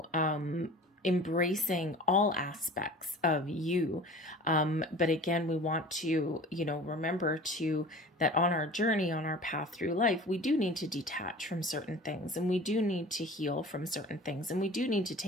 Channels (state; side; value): normal; both; correlation 0.41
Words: embracing all aspects of you. But again, we want to, you know, remember that on our journey, on our path through life, we do need to detach from certain things, and we do need to heal from certain things, and we do need to